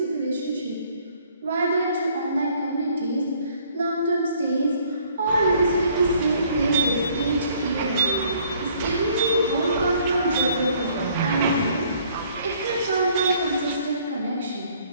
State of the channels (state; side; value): inverted; both; correlation -0.61